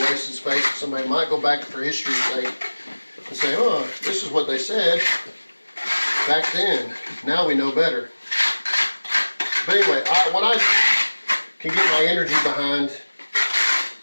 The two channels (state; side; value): inverted; both; correlation -1.00